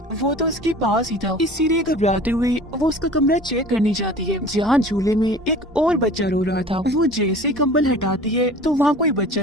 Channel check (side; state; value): both; normal; correlation 0.43